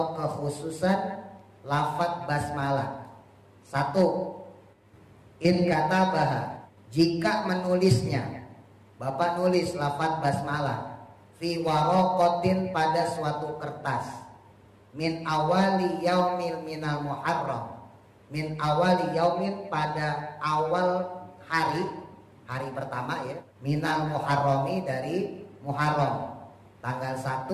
kekhususan lafaz basmalah. 1. In katabaha, jika menulisnya, Bapak nulis lafaz basmalah fi waraqatin, pada suatu kertas, min awali yaumil minal muharram, min awali yaumin, pada awal hari pertama ya, minal muharrami, dari Muharram, tanggal 1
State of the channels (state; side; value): identical; both; correlation 1.00